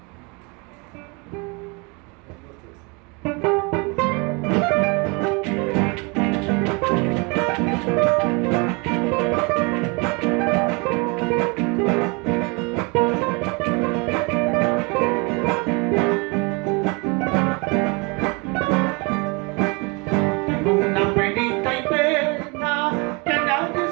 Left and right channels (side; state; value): left; quieter; 30.0 dB